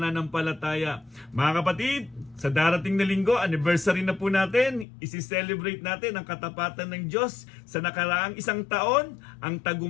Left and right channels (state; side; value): drops out; right; at 4.9 s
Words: Mga kapatid, sa darating na linggo, anniversary na po natin, isi-celebrate natin ang katapatan ng Diyos sa nakaraang isang taon. Ang